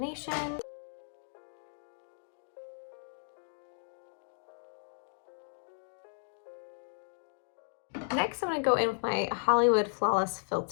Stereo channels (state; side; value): silent; right; 54 dB below the other